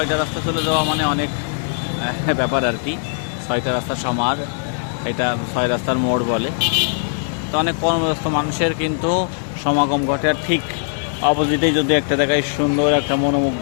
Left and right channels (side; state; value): right; silent; digital silence